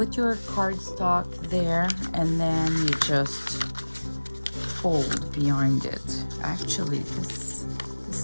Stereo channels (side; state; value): both; inverted; correlation -1.00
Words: your cardstock there and then you just fold behind it. Actually, this